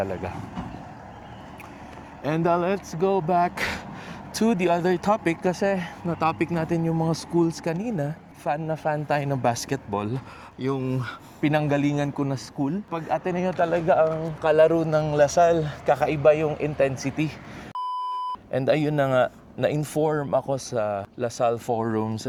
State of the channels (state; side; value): identical; both; correlation 1.00